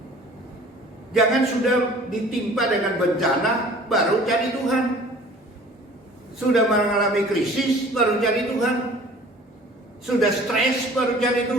Jangan sudah ditimpa dengan bencana baru cari Tuhan. Sudah mengalami krisis baru cari Tuhan. Sudah stres baru cari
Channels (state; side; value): normal; both; correlation 0.48